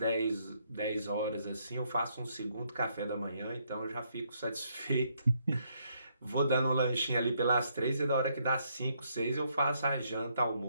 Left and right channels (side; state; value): both; inverted; correlation -0.73